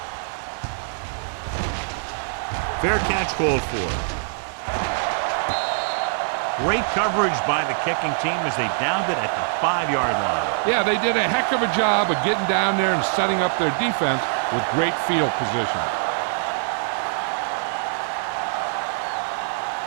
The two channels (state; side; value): silent; left; 63 dB below the other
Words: Fair catch called for. Great coverage by the kicking team as they downed it at the 5-yard line. Yeah, they did a heck of a job of getting down there and setting up their defense with great field position.